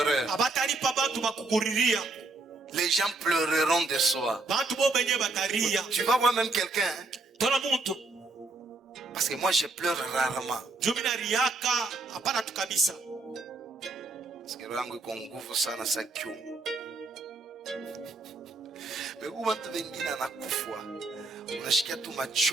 abatalipa bantu bakukuriria. Les gens pleureront de soi. Bantu bo benye bataria. Tu vas voir même quelqu'un, hein? Tona muntu. Parce que moi je pleure rarement. Jumina riaka hapana tu kabisa. Parce que rangu iko nguvu sana sa kiumu. Megu watu wengine anakufa. Unashikia tu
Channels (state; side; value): quieter; left; 3.4 dB